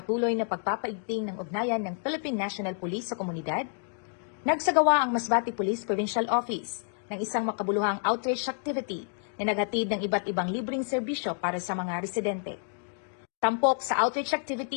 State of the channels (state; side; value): silent; right; 58 dB below the other